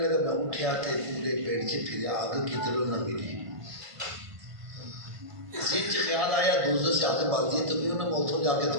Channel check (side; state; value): left; late; 1.5 ms